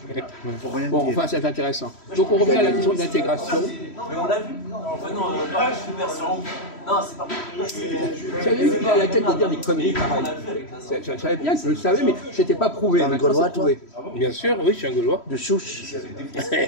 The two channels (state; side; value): late; right; 3.1 ms